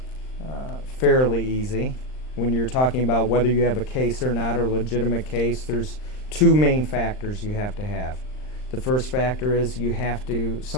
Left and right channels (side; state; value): right; late; 39 ms